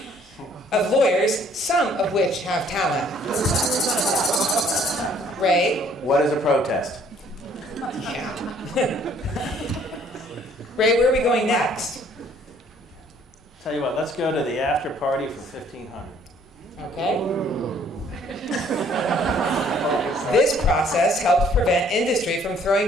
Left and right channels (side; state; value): both; normal; correlation 0.61